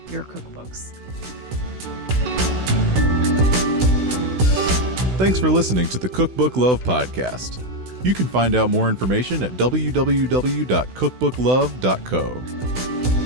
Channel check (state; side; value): late; left; 16 ms